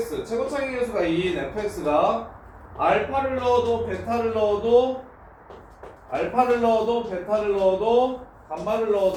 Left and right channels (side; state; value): both; identical; correlation 1.00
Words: 최고차기 계수가 2인 fx가 알파를 넣어도 베타를 넣어도 알파를 넣어도 베타를 넣어도 감마를